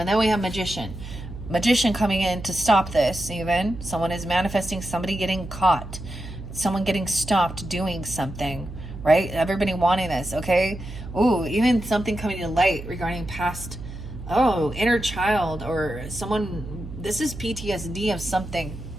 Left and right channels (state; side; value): noise; right; hum, 11 dB below the sound